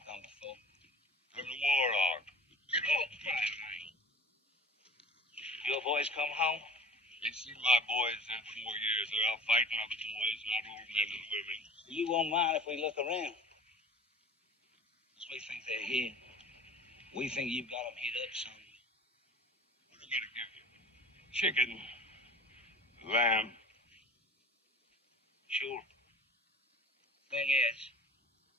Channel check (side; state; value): both; normal; correlation 0.42